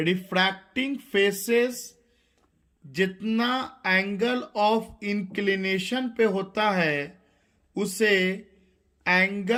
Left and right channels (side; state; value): both; identical; correlation 1.00